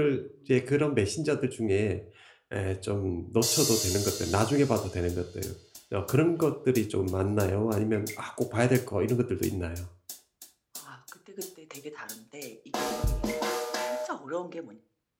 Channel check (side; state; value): both; identical; correlation 1.00